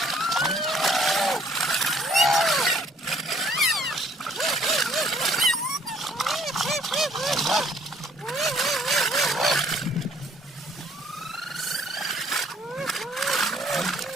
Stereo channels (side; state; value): both; normal; correlation 0.62